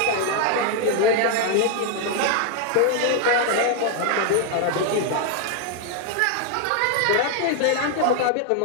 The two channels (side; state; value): both; different; correlation 0.00